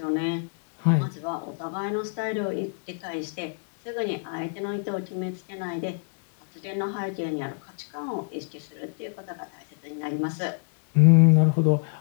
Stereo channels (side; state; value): right; silent; 61 dB below the other